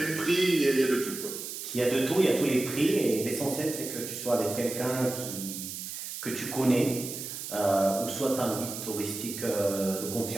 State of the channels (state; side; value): noise; right; hiss, 8 dB below the sound